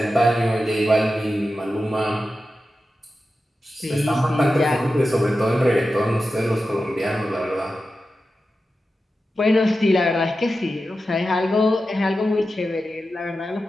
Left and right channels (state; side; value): normal; both; correlation 0.92